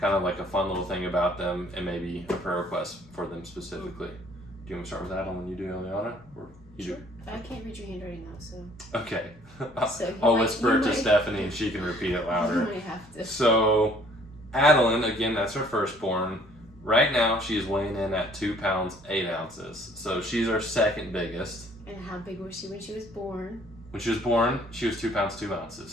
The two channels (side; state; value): both; normal; correlation 0.58